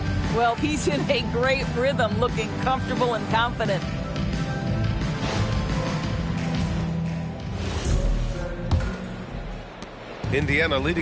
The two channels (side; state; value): both; identical; correlation 1.00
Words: Well, he's in a great rhythm, looking comfortable and confident. Indiana